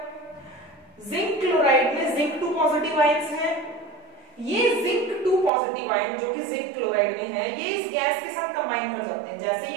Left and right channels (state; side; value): drops out; left; at 5.5 s